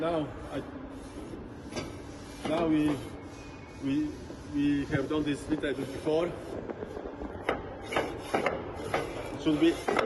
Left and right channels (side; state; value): both; identical; correlation 1.00